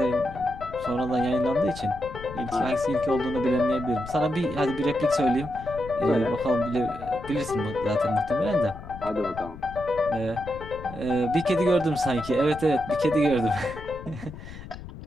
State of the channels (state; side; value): noise; left; rumble, 13 dB below the sound